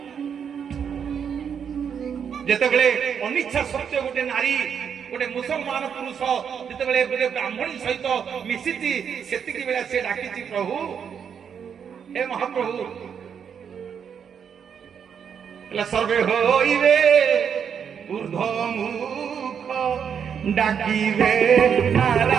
जेतेबेले अनिच्छा सत्य गोटे नारी गोटे मुसलमान पुरुष जितेबेले गोटे ब्राह्मणी सहित मिशिची सेतिकी बेला से डाकिची प्रभु हे महाप्रभु सर्वे होइबे ऊर्ध्वमुख डाकिबे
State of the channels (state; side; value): quieter; left; 7.5 dB